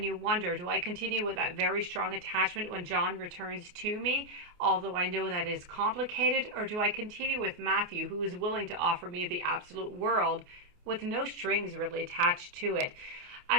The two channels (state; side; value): late; left; 28 ms